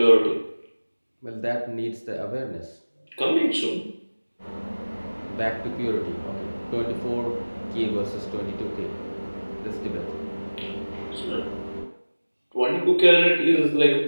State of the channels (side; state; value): both; inverted; correlation -1.00